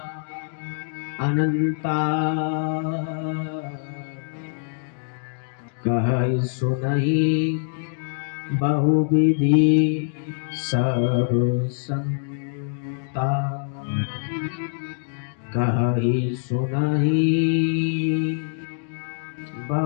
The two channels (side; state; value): right; silent; digital silence